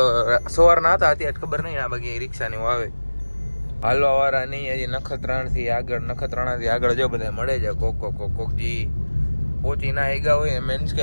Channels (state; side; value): inverted; both; correlation -1.00